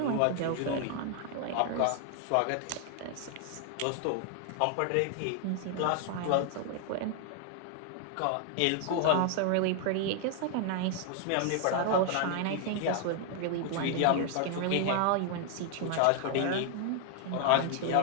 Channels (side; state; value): both; different; correlation 0.00